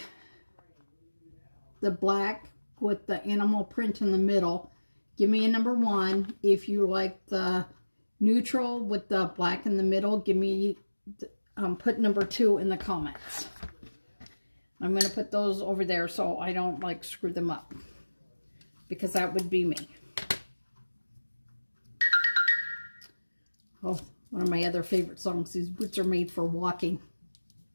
the black with the animal print in the middle, give me a number 1. If you like the neutral with the black in the middle, give me, put number 2 in the comments. I'm going to put those over there so I don't like screw them up, because that would be me. Oh, one of my other favorite songs, These Boots Are Made for Walking.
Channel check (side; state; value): both; inverted; correlation -1.00